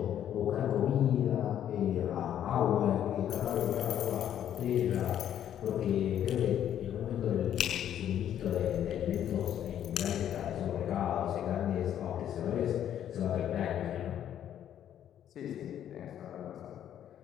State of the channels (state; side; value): quieter; right; 10.4 dB